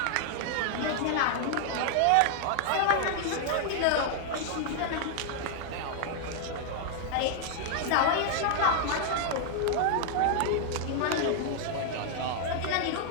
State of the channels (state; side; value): different; both; correlation 0.00